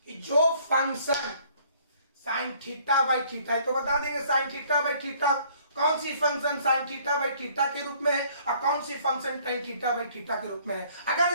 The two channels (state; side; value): inverted; both; correlation -0.59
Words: जो function sine theta by theta है तो बता देंगे साइन थीटा बाई थीटा कौन सी function sine theta by theta के रूप में है और कौन सी function tan theta by theta के रूप में है।